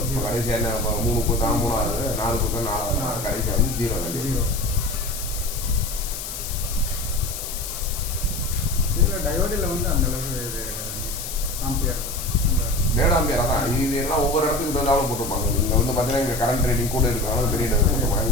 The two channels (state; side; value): noise; left; hiss, 7 dB below the sound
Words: இப்போ கடைசியாக என்ன 3 கொடுத்தா 3 ஆகுது, 4 கொடுத்தா 4 ஆகுது, கடைசியாக வந்து 0 வேல்யூ. இதில் டயோடில் வந்து அந்த அளவுக்கு இது ஆம்பியர் டேட் ஆம்பியர் அதான். இது எல்லாம் ஒவ்வொரு இடத்துக்கு இருந்தாலும் போட்டிருப்பாங்க. இங்கே வந்து பார்த்தீங்கன்னா இங்கே கரண்ட் ரேட்டிங் கூட இருக்கிறனால பெரிய டேட்